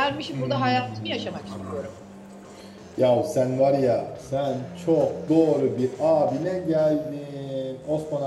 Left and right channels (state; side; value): identical; both; correlation 1.00